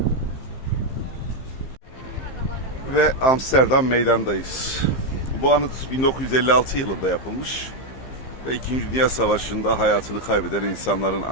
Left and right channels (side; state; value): right; late; 15 ms